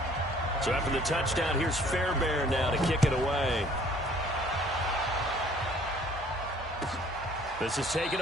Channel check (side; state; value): both; normal; correlation 0.57